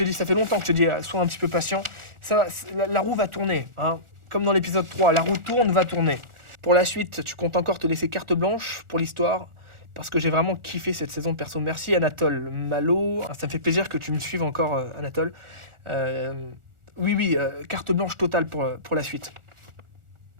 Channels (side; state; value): left; late; 1.4 ms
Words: dis, ça fait longtemps que je te dis, sois un petit peu patient. La roue va tourner, hein. Comme dans l'épisode 3, la roue tourne, va tourner. Pour la suite, tu comptes encore te laisser carte blanche pour l'histoire, parce que j'ai vraiment kiffé cette saison de perso. Merci Anatole Malo, ça me fait plaisir que tu me suives encore, Anatole. Oui, carte blanche totale pour la suite.